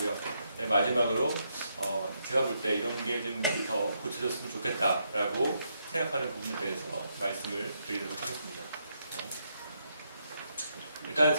네, 마지막으로 제가 볼 때 이런 게 좀 더 고쳐졌으면 좋겠다라고 생각하는 부분에 대해서 말씀을 드리도록 하겠습니다. 일단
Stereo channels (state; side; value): inverted; both; correlation -0.78